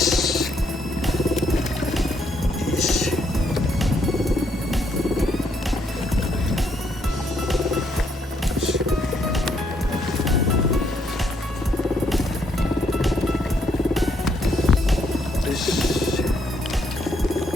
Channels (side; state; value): both; normal; correlation 0.73